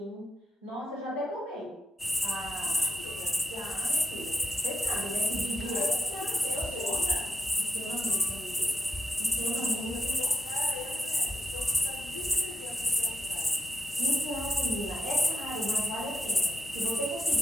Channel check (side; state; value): both; normal; correlation 0.87